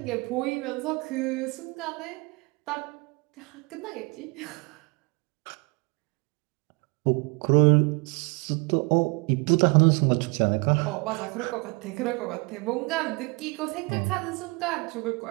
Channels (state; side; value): quieter; left; 29.0 dB